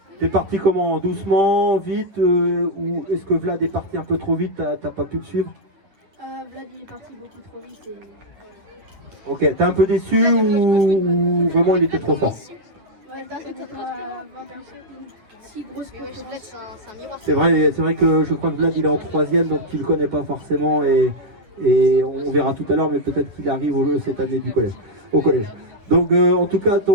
T'es parti comment? Doucement, vite, ou est-ce que Vlad est parti un peu trop vite, t'as pas pu le suivre? Vlad il est parti beaucoup trop vite. Et... Ok, t'es un peu déçu ou vraiment il était trop fort? Ouais, c'était pas une si grosse concurrence. C'est vrai que je crois que Vlad il est en 3e, donc tu le connais pas forcément et on verra tout à l'heure, mais peut-être qu'il arrive cette année au collège. Donc en tout cas,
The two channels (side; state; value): left; late; 10 ms